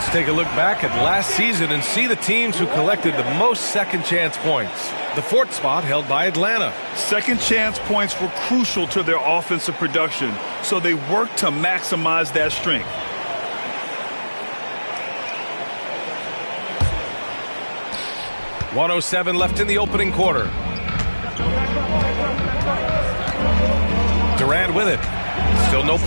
take a look back at last season and see the teams who collected the most second chance points. The 4th spot held by Atlanta. Second chance points were crucial to their offensive production, so they worked to maximize that strength. .107 left in the opening quarter. Durant with it. Still no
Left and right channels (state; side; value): inverted; both; correlation -1.00